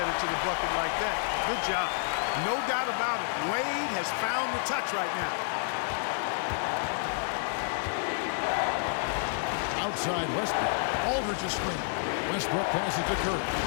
to the bucket like that. Good job. No doubt about it. Wade has found the touch right now. Outside Westbrook. Aldridge is screen. Westbrook passes to Curry.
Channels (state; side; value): silent; right; 58 dB below the other